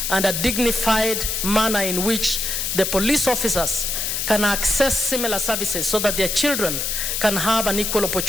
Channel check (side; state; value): left; noise; hiss, 1 dB below the sound